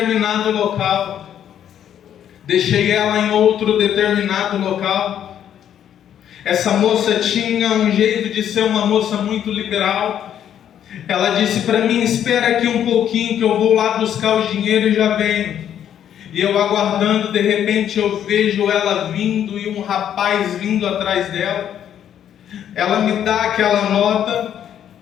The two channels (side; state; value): right; quieter; 9.9 dB